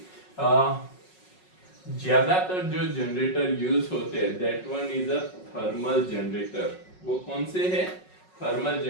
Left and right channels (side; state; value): right; late; 5.4 ms